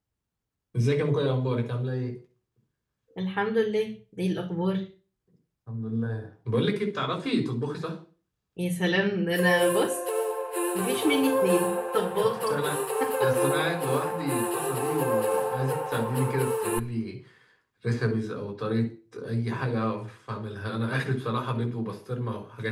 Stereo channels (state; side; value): identical; both; correlation 1.00